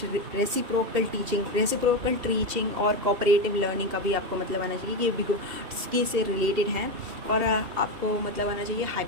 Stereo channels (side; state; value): left; late; 2.8 ms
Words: रेसिप्रोकल टीचिंग और कोऑपरेटिव लर्निंग का भी आपको मतलब आना चाहिए। ये भी से रिलेटेड हैं। और आपको मतलब आना चाहिए